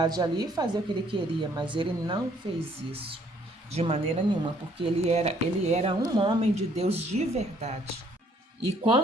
ali e fazer o que ele queria, mas ele não fez isso de maneira nenhuma, porque ele era um homem de Deus de verdade. E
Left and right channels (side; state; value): both; normal; correlation 0.63